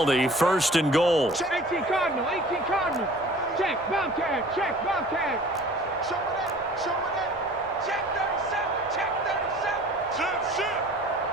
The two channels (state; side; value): normal; both; correlation 0.46